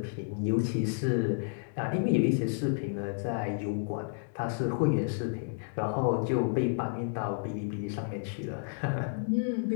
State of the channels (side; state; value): right; silent; digital silence